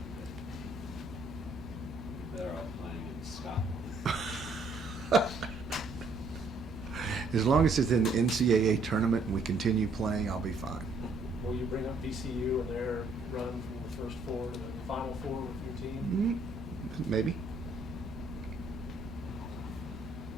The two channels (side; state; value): left; quieter; 3.1 dB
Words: You're better off playing in Scotland. As long as it's in the NCAA tournament and we continue playing, I'll be fine. Will you bring up VCU and their run from the first 4 to the final 4 with your team? Maybe.